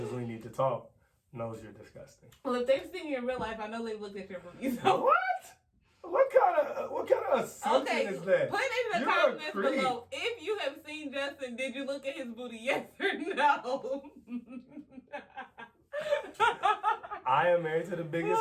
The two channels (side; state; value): both; identical; correlation 1.00